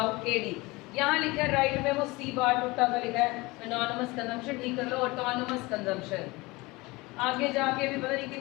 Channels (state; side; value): quieter; right; 22.8 dB